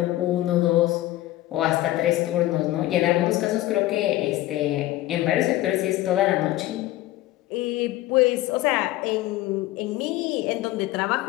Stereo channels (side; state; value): right; quieter; 16.1 dB